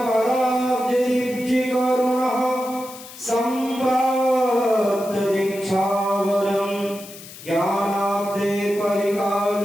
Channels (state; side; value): noise; left; hiss, 16 dB below the sound